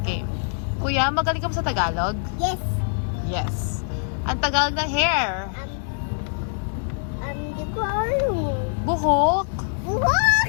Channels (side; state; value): right; silent; digital silence